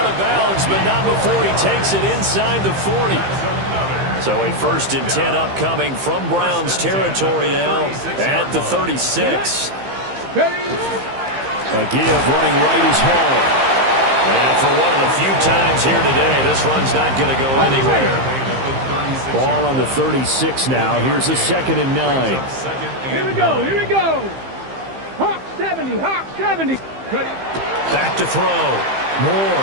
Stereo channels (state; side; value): late; left; 15 ms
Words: of bounds, but not before he takes it inside the 40. So a 1st and 10 upcoming from Browns territory now at the 36. A give running right is home. And for one of the few times here today, this run's not going to go anywhere. Ball on the 36 now. Here's a 2nd and 9. Here we go. Hawk 70. Back to throw.